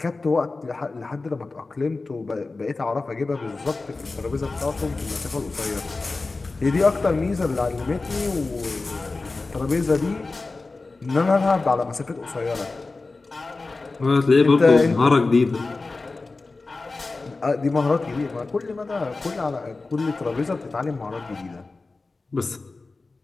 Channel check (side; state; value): right; quieter; 3.6 dB